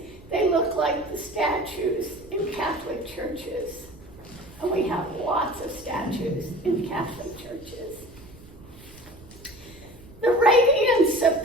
churches. And we have lots of statues in Catholic churches. The radiance of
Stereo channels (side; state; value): right; noise; rumble, 21 dB below the sound